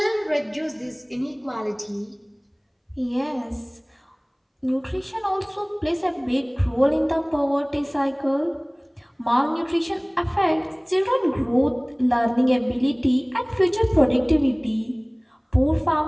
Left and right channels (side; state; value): both; identical; correlation 1.00